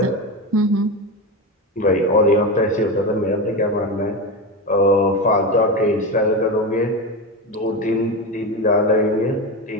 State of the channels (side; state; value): both; normal; correlation 0.18